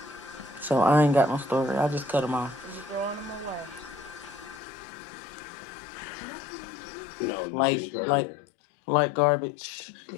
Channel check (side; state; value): right; drops out; at 4.6 s